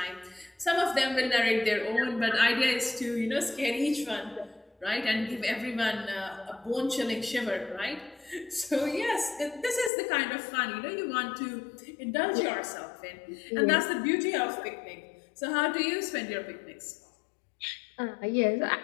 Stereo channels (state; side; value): drops out; right; at 9.9 s